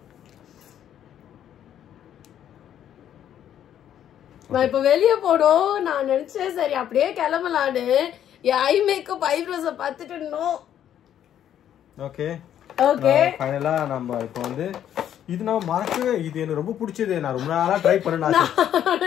நான் இப்ப வெளியே போனோம். நான் நினைச்சேன் சரி அப்படியே கிளம்பலான்னு. ஐ மேக்கப் ஐப்ரோஸ பார்த்துட்டு நோ. Okay okay. ஃபைனலா நம்ம இப்போ வந்து இது நான் மறக்கவே இது எனக்கு ரொம்ப பிடிச்சது. நான் ரொம்ப நாளா ட்ரை பண்ணேன்.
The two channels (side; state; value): right; quieter; 10.3 dB